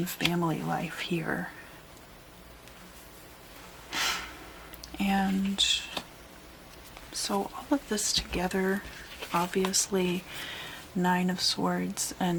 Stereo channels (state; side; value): identical; both; correlation 1.00